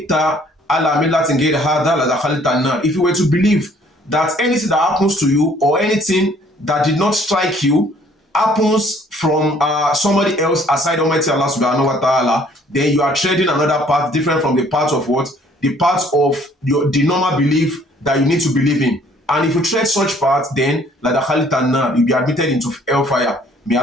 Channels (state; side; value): normal; both; correlation 0.59